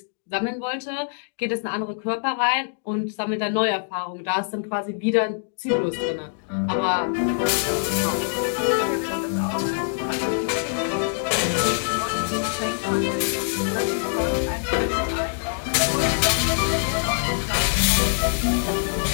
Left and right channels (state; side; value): silent; right; digital silence